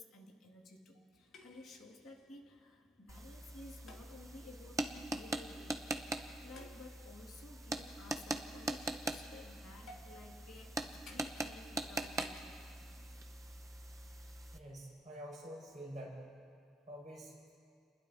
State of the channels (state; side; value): normal; both; correlation 0.72